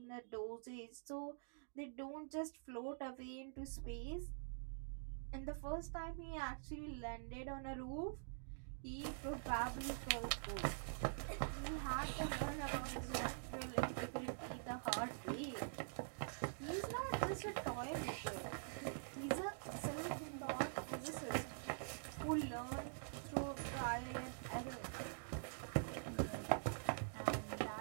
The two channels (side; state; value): left; silent; digital silence